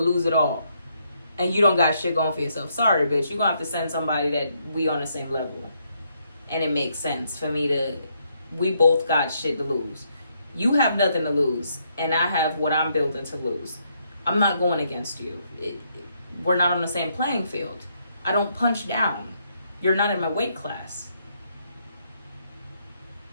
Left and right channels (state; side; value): inverted; both; correlation -0.75